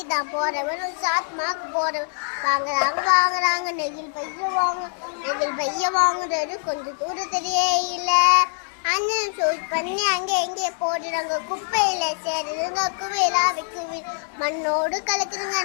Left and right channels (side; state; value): right; silent; 60 dB below the other